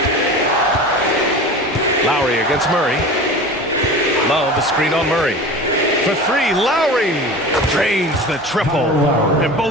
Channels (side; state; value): both; normal; correlation 0.34